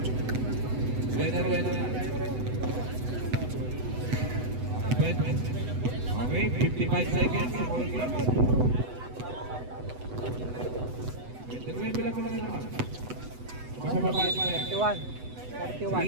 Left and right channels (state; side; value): late; left; 8.0 ms